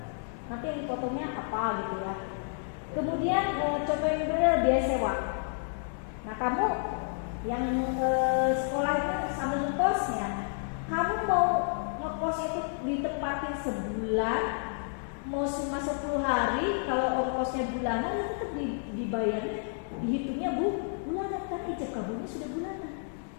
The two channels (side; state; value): right; silent; 57 dB below the other